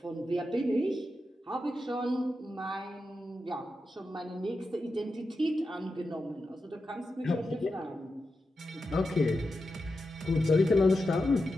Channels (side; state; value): both; normal; correlation 0.90